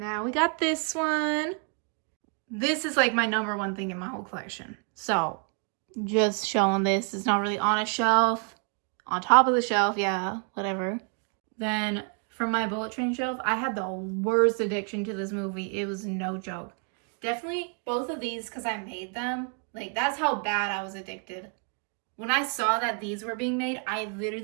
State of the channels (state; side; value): quieter; left; 38.6 dB